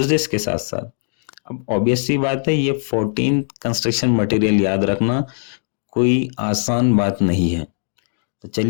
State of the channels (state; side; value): silent; right; digital silence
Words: के साथ साथ। अब ऑब्वियस सी बात है, ये 14 कंस्ट्रक्शन मटेरियल याद रखना कोई आसान बात नहीं है। तो